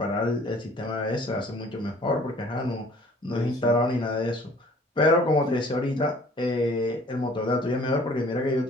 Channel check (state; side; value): normal; both; correlation 0.53